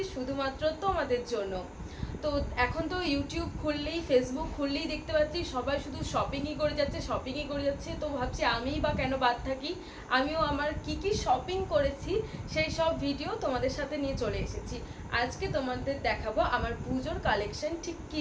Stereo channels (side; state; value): both; identical; correlation 1.00